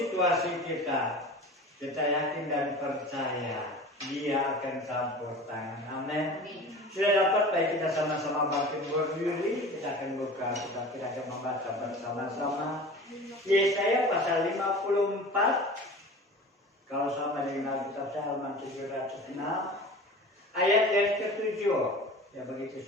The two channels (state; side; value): normal; both; correlation 0.38